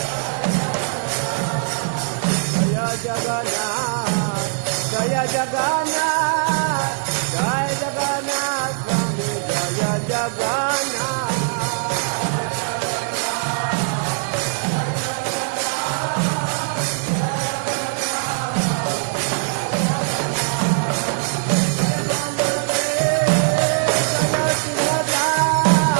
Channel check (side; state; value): left; silent; 65 dB below the other